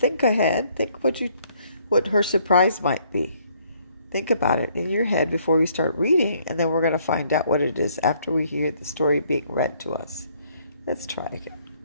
ahead, think what her surprise might be. Think about it in your head before we start reading, and then we're going to find out what it is after we hear the story being read to us. Let's try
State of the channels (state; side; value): inverted; both; correlation -0.66